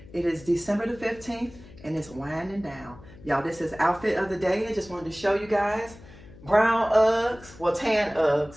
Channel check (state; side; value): noise; left; hum, 20 dB below the sound